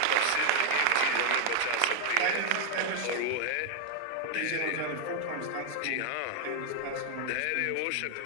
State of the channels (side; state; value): both; different; correlation 0.00